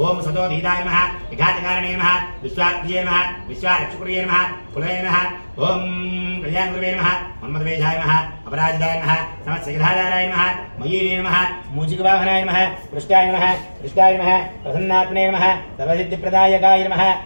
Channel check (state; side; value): inverted; both; correlation -1.00